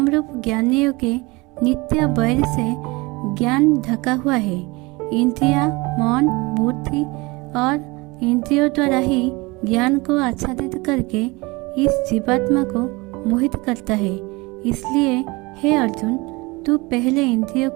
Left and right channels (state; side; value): quieter; left; 24.4 dB